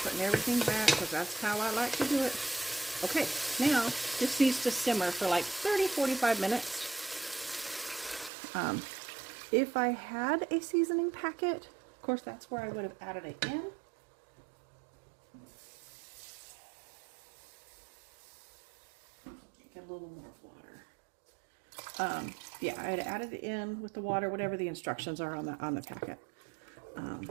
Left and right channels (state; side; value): drops out; left; at 8.3 s